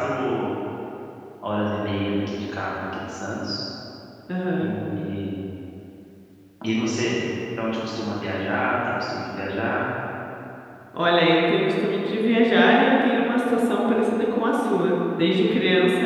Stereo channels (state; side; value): identical; both; correlation 1.00